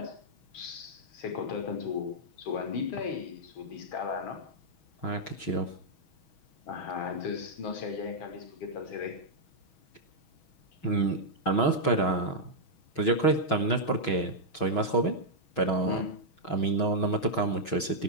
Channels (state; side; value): late; right; 6.2 ms